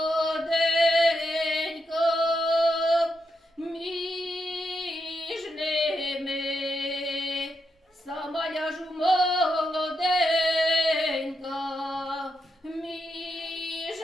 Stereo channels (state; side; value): normal; both; correlation 0.84